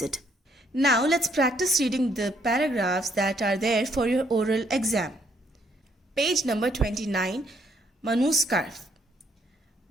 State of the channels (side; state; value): both; normal; correlation 0.69